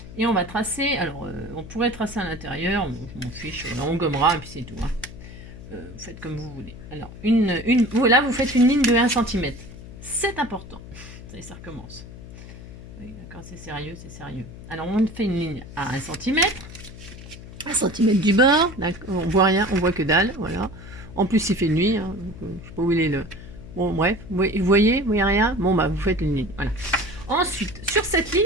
Et on va tracer... Alors, on pourrait tracer à l'intérieur. Je m'en fiche. On gommera et puis c'est tout. Hein. Vous faites comme vous voulez. Alors, voilà, vous faites une ligne de 1 cm. C'est important. Ça y est, ça recommence. Oui, d'accord, c'est sérieux, c'est sérieux. Alors, on fait une ligne à 1 cm. 1 cm du bord. On voit rien, on voit que dalle. Voilà. En plus, il fait nuit. Hein, donc, je ne sais pas où il est le... Bon, bref. Vous voyez rien? Bon, bah, vous faites une ligne. Voilà. Ensuite, sur cette ligne,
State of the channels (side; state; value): left; noise; hum, 15 dB below the sound